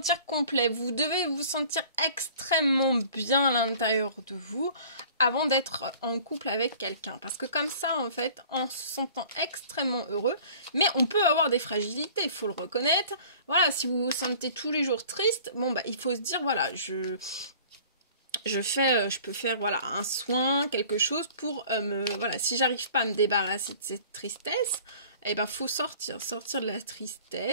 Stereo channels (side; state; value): both; inverted; correlation -0.48